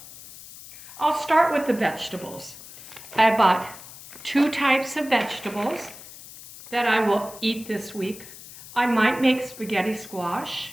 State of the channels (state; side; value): noise; left; hiss, 16 dB below the sound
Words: I'll start with the vegetables. I bought 2 types of vegetables that I will eat this week. I might make spaghetti squash